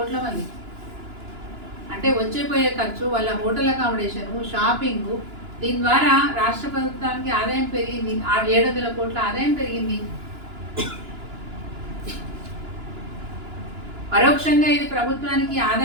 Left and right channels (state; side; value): late; left; 2.9 ms